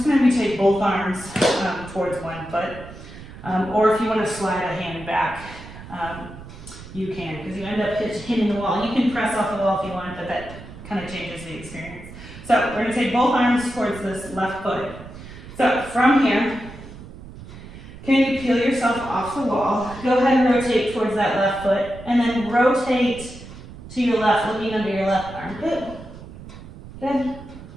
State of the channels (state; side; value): noise; right; rumble, 15 dB below the sound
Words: going to take both arms towards one foot. Or if you want to slide a hand back, you can, because you end up hitting the wall. You can press off the wall if you want, but that kind of changes the experience. So we're going to take both arms towards this left foot. So from here, can you peel yourself off the wall? Go ahead and rotate towards that left foot, and then rotate to your left, looking under your left armpit. Good.